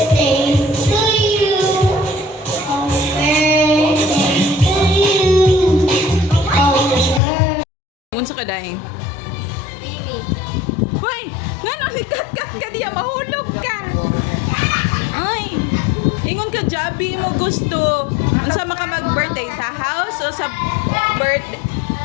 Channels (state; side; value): drops out; right; at 7.2 s